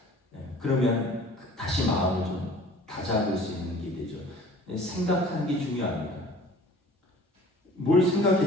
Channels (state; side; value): normal; both; correlation 0.47